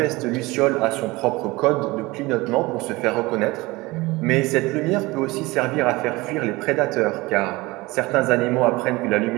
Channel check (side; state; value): left; quieter; 21.8 dB